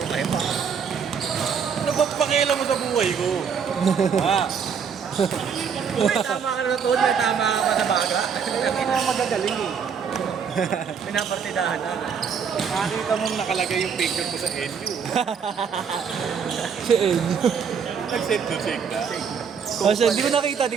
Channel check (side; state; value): left; quieter; 6.7 dB